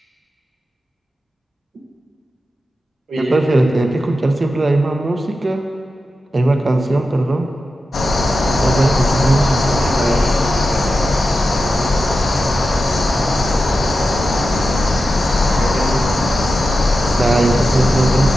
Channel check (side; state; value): both; normal; correlation 0.91